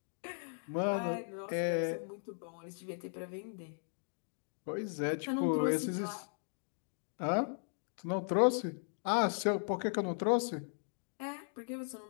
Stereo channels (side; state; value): right; silent; digital silence